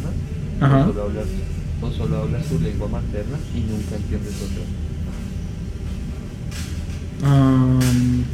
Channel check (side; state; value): both; identical; correlation 1.00